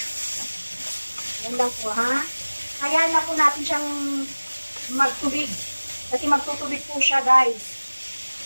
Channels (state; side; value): inverted; both; correlation -1.00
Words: Yan lang po, ha? Hayaan na po natin siyang magtubig. Kasi magtutubig po siya, guys.